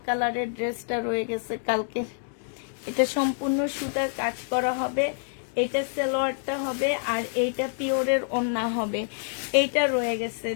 কালারের ড্রেসটা রয়ে গেছে কালকে। এটা সম্পূর্ণ সুতার কাজ করা হবে, এটা সালোয়ারটা হবে, আর এইটা পিওরের ওড়না হবে। এইটা রয়ে গেছে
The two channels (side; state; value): right; silent; digital silence